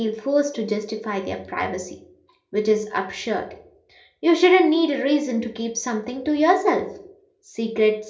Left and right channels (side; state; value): both; identical; correlation 1.00